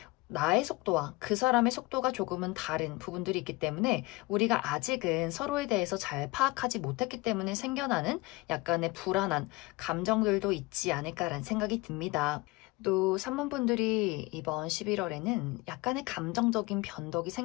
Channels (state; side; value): quieter; right; 23.0 dB